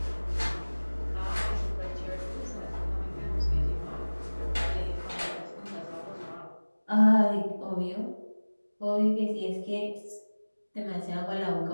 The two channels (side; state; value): both; inverted; correlation -1.00